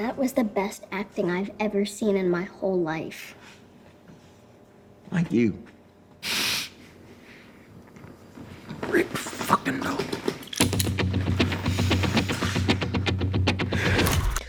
was the best acting I've ever seen in my whole life. Like you. Rick fucking Dalton.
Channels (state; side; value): identical; both; correlation 1.00